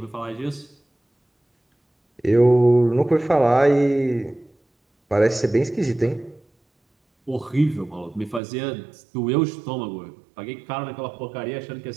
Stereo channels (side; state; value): left; drops out; at 8.4 s